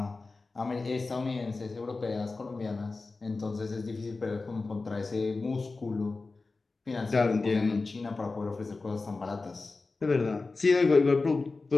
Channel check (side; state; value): right; quieter; 3.7 dB